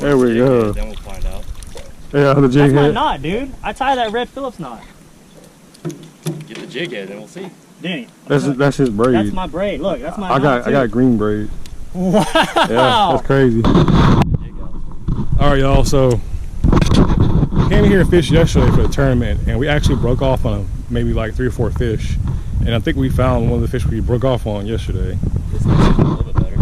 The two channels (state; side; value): identical; both; correlation 1.00